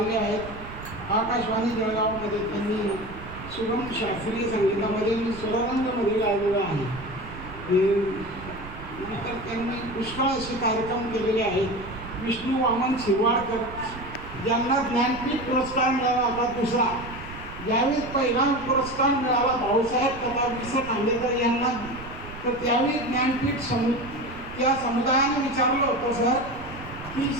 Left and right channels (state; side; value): noise; right; rumble, 14 dB below the sound